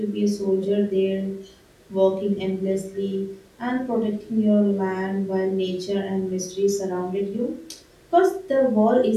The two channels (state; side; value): identical; both; correlation 1.00